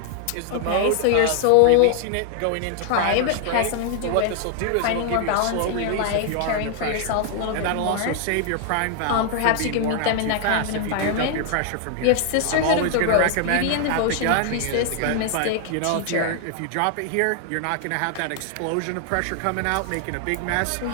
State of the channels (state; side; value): different; both; correlation 0.00